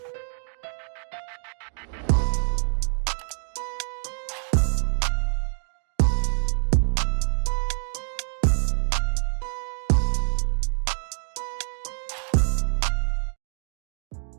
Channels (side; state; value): left; silent; digital silence